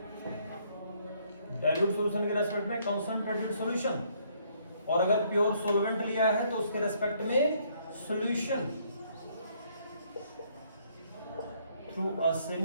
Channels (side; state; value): both; inverted; correlation -0.67